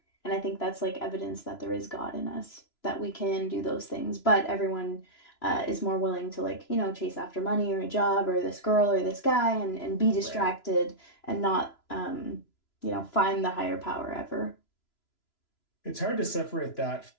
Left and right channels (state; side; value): late; right; 3.0 ms